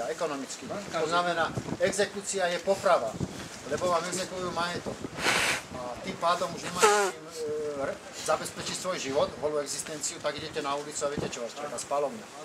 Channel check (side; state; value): both; identical; correlation 1.00